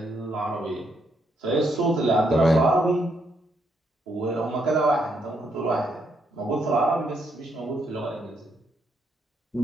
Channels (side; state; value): both; normal; correlation 0.76